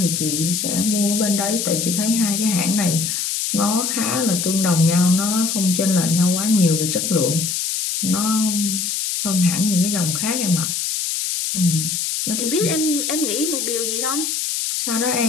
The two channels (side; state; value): left; noise; hiss, 1 dB below the sound